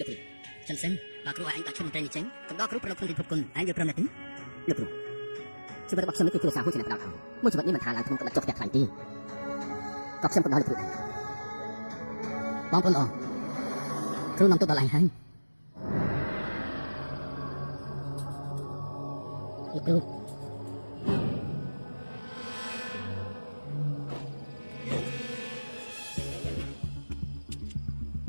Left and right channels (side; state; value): both; inverted; correlation -1.00